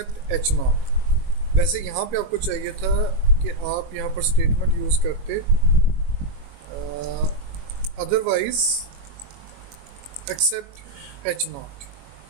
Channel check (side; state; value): left; late; 21 ms